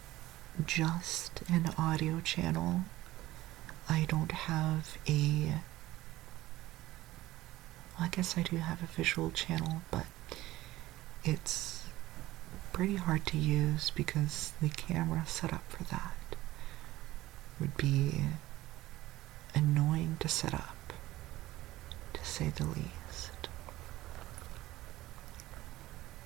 just an audio channel. I don't have I guess I do have a visual channel, but it's pretty hard to use because the camera set up for that would be annoying to set up, to say the least.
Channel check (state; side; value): quieter; left; 16.7 dB